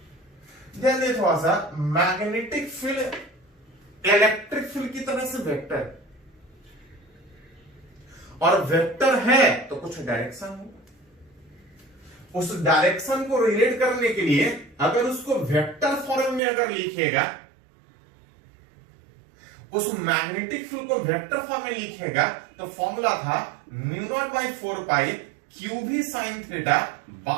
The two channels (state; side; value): drops out; left; at 16.4 s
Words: ध्यान दें थोड़ा सा, मैग्नेटिक फील्ड इलेक्ट्रिक फील्ड की तरह से वेक्टर, और वेक्टर है तो कुछ डायरेक्शन होगा, उस डायरेक्शन को रिलेट करने के लिए अगर उसको वेक्टर फॉर्म में अगर लिखेगा, उस मैग्नेटिक फील्ड को वेक्टर फॉर्म में लिखेगा, तो फॉर्मूला था mu naught by 4 pi q भी sine theta